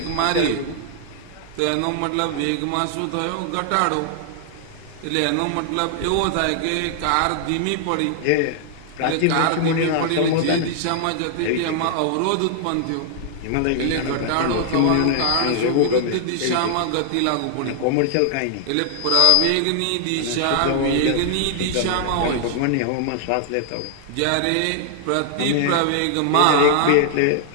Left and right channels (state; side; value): different; both; correlation 0.00